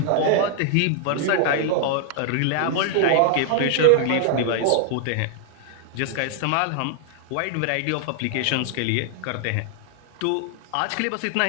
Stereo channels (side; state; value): both; different; correlation 0.00